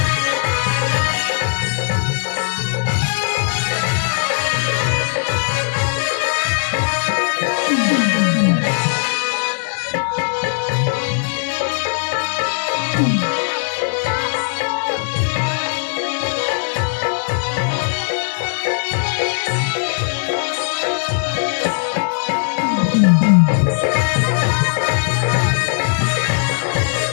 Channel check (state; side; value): silent; right; 67 dB below the other